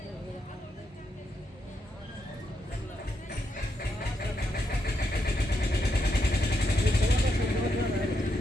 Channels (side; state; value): both; normal; correlation 0.81